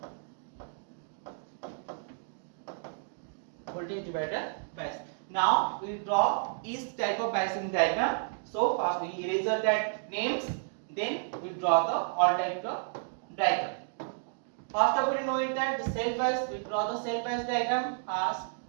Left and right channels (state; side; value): silent; left; digital silence